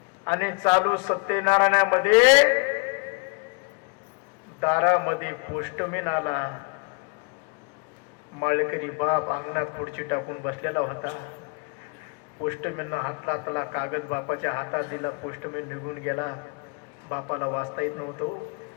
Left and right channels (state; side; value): quieter; right; 32.5 dB